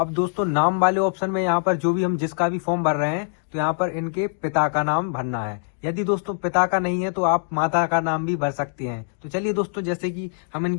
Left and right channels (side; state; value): right; silent; digital silence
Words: दोस्तों नाम वाले ऑप्शन में यहाँ पर जो भी हम जिसका भी फॉर्म भर रहे हैं तो यहाँ पर इनके पिता का नाम भरना है। यदि दोस्तों पिता का नहीं है तो आप माता का नाम भी भर सकते हैं। तो चलिए दोस्तों जैसे कि हम